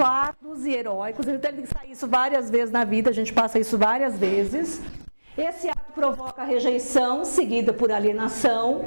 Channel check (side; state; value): both; inverted; correlation -1.00